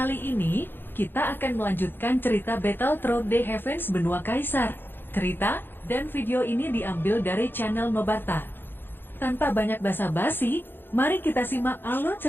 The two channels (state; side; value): late; right; 0.099 ms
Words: ini kita akan melanjutkan cerita Battle Through the Heavens Benua Kaisar. Cerita dan video ini diambil dari channel Nobarta. Tanpa banyak basa-basi, mari kita simak alur